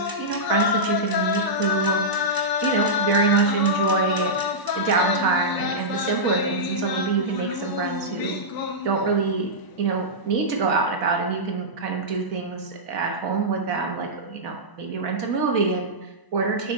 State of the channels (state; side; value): late; right; 1.0 ms